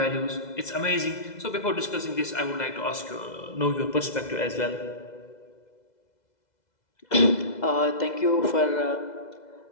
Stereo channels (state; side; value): late; right; 2.0 ms